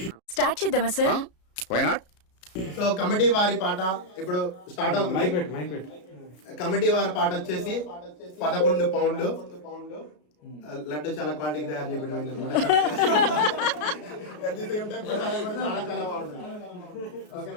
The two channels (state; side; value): late; right; 33 ms